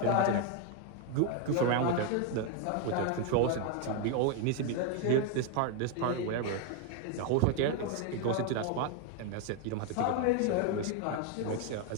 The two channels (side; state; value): both; different; correlation 0.01